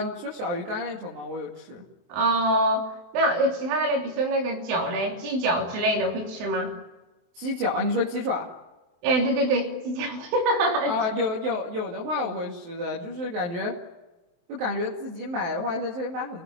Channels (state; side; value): late; left; 23 ms